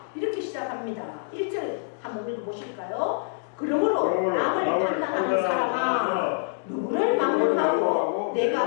이렇게 시작합니다. 1절 한번 읽어보실까요? 그러므로 남을 판단하는 사람아 누구를 막론하고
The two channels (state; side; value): silent; right; digital silence